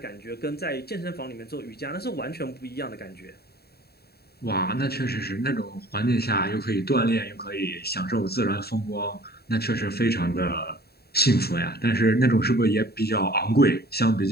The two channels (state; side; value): late; right; 0.46 ms